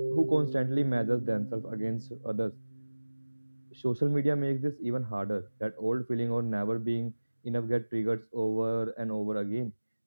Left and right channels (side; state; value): both; inverted; correlation -1.00